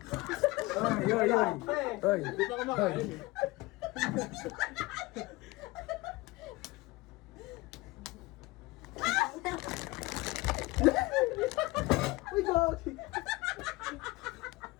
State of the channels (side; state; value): right; quieter; 21.3 dB